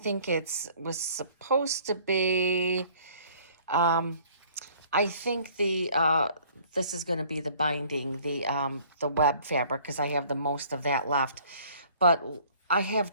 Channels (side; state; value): both; inverted; correlation -0.55